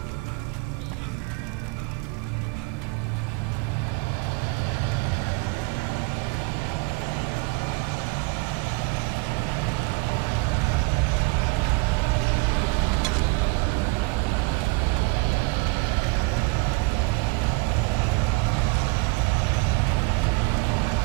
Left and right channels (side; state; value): left; quieter; 28.2 dB